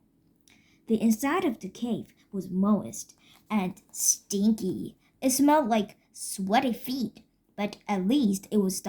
The inside of the cave was moist and stinky. It smelled like sweaty feet, but at least it was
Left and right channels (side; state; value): both; identical; correlation 1.00